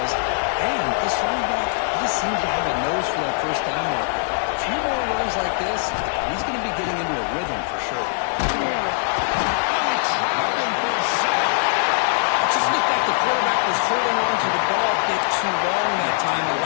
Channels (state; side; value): silent; right; 55 dB below the other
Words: And this running back just seems to have a nose for that 1st down mark. A few more runs like this, he's going to be getting into a rhythm for sure. It just looked like the quarterback was holding on to the ball a bit too long that time,